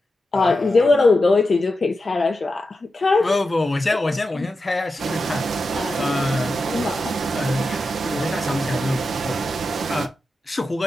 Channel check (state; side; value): normal; both; correlation 0.90